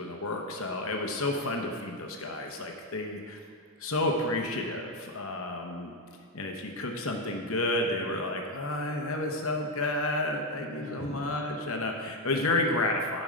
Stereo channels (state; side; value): normal; both; correlation 0.07